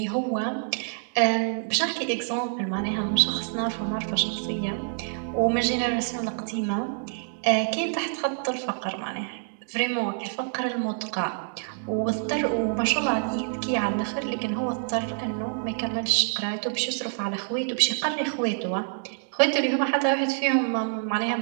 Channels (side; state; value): left; silent; digital silence